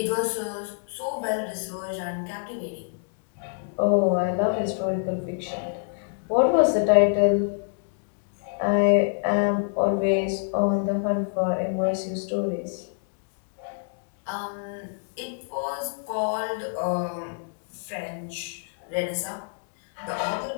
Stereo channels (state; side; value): silent; right; digital silence